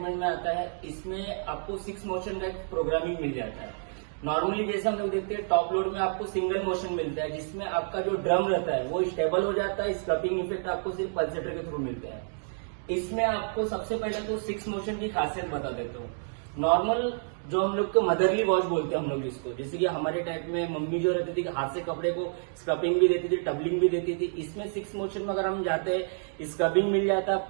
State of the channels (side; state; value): left; silent; digital silence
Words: में आता है। इसमें आपको 6 मोशन का प्रोग्रामिंग मिल जाता है। नॉर्मली जैसे हम लोग देखते हैं टॉप लोड में आपको सिंगल मोशन मिलता है, जिसमें आपका जो ड्रम रहता है वो स्टेबल हो जाता है। स्क्रपिंग इफेक्ट आपको सिर्फ पल्सेटर के थ्रू मिलता है। इसमें आपको सबसे पहले तो 6 मोशन की खासियत बता देता हूँ। नॉर्मल जो हम लोग को मदरली वॉश बोलते हैं हम लोग इसको, जैसे कि हमारे टाइप में मम्मी जो रहती थी हाथ से कपड़े को स्क्रबिंग भी देती थी, टबलिंग भी देती थी। इसमें 6 मोशन में अगर हम जाते हैं, स्क्रबिंग मिल जाता है